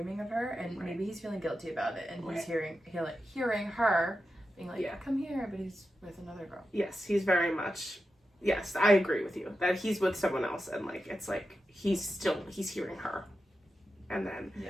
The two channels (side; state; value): both; normal; correlation 0.90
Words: of her, and maybe he's feeling guilty about it, and he's hearing her being like, come here, but he's with another girl. Yes, he's very much, yes, I agree with you, that he's with someone else, and, like, it's like, he's hearing her. And then,